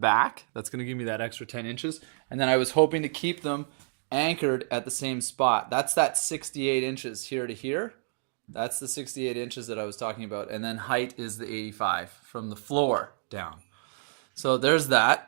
That's gonna give me that extra 10 inches. And then I was hoping to keep them anchored at the same spot. That's that 68 inches here to here. That's the 68 inches that I was talking about. And then height is the 85 from the floor down. So there's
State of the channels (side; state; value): left; silent; digital silence